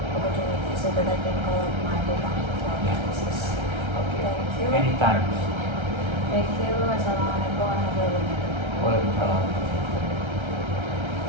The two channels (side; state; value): left; late; 1.3 ms